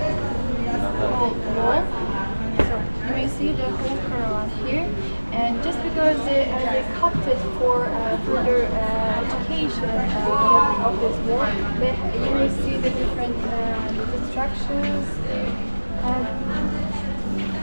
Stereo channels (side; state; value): both; inverted; correlation -1.00